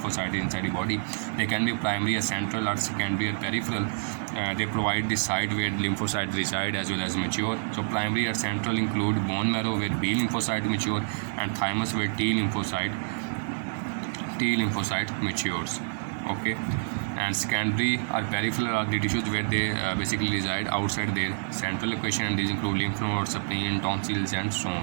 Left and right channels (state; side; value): silent; left; digital silence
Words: inside the body. They can be primary or central or secondary or peripheral. They provide the site where lymphocytes reside as well as mature. So primary or central include bone marrow where B lymphocyte mature, and thymus where T lymphocyte matures. Okay, and secondary or peripheral are the tissues where they basically reside outside their central location, and these include lymph nodes, spleen, tonsils, and so